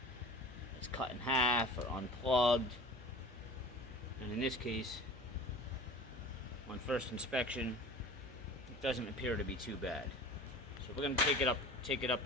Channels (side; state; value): both; normal; correlation 0.39